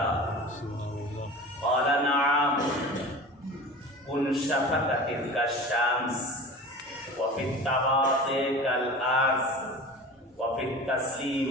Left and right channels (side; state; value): both; normal; correlation 0.36